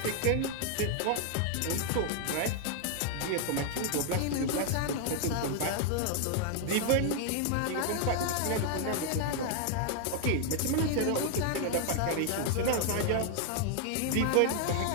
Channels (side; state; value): both; different; correlation 0.00